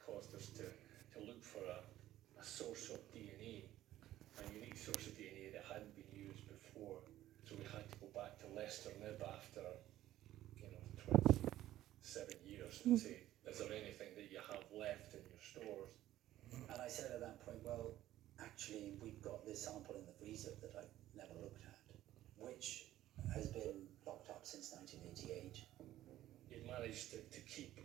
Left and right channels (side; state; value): left; quieter; 13.9 dB